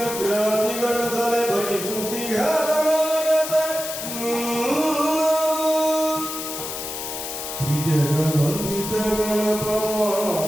ಸಲೆ ಭಜಿಸುತ್ತೀಹ ಗಣವರತ ತ್ರಿಜಗ ವಂದಿತ ಗಣಪ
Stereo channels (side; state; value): left; noise; hiss, 6 dB below the sound